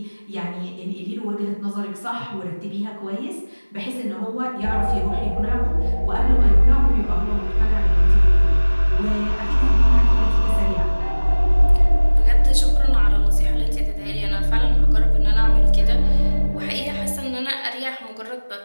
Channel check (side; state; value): both; inverted; correlation -1.00